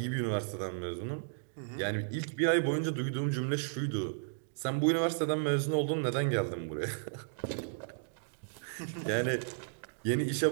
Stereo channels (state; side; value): silent; left; digital silence